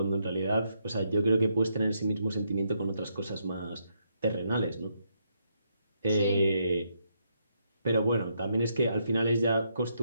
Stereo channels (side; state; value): both; inverted; correlation -0.77